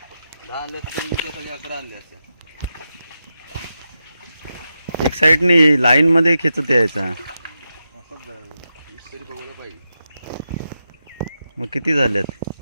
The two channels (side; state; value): both; inverted; correlation -0.88